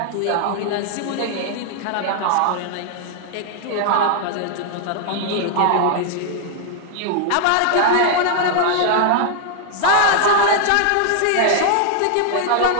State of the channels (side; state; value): both; different; correlation 0.00